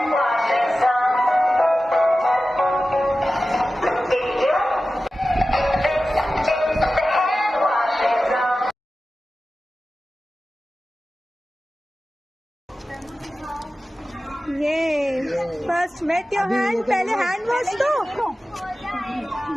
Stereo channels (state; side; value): normal; both; correlation 0.95